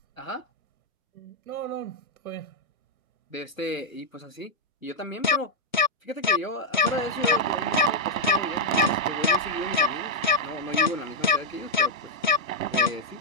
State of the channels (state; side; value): normal; both; correlation -0.02